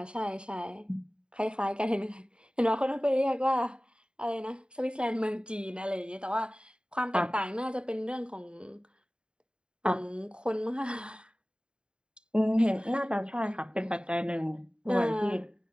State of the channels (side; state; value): left; late; 0.050 ms